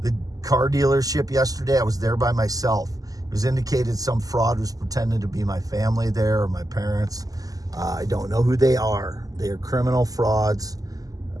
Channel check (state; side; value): late; left; 0.17 ms